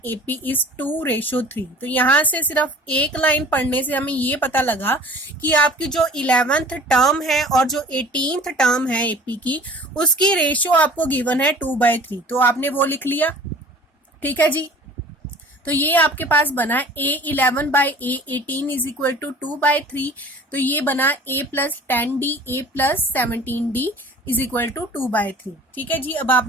AP is 2:3। तो यहाँ से सिर्फ एक लाइन पढ़ने से हमें ये पता लगा कि आपकी जो 11th टर्म है और जो 18th टर्म है एपी की, उसकी रेशियो आपको गिवन है 2/3। तो आपने वो लिख लिया, ठीक है जी। तो ये आपके पास बना A11 by A18 is equal to 2/3। तो ये बना A plus 10D A plus 17D is equal to 2/3। ठीक है जी। अब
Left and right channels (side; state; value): both; normal; correlation 0.46